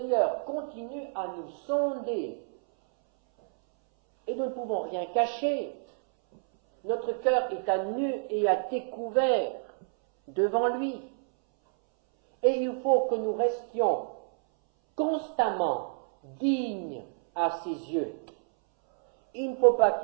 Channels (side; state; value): left; silent; 59 dB below the other